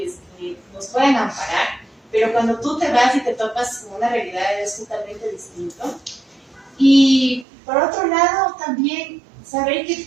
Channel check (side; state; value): left; drops out; at 7.5 s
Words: que nos pueden amparar, pero cuando tú te vas y te topas con una realidad es totalmente distinto. Y por otro lado, también saber que